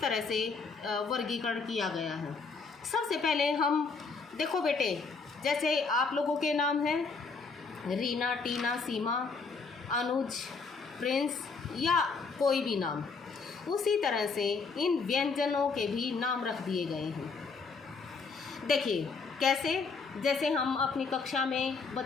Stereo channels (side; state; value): right; quieter; 4.7 dB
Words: तरह से वर्गीकरण किया गया है। सबसे पहले हम देखो बेटे, जैसे आप लोगों के नाम हैं रीना, टीना, सीमा, अनुज, प्रिंस या कोई भी नाम, उसी तरह से इन व्यंजनों के भी नाम रख दिए गए हैं। देखिए कैसे, जैसे हम अपनी कक्षा में